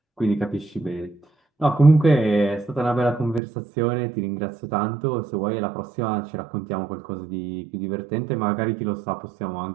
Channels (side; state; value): left; drops out; at 3.4 s